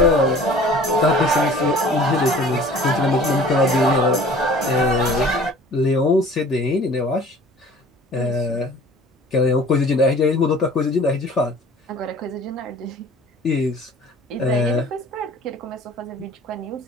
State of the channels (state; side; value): normal; both; correlation 0.47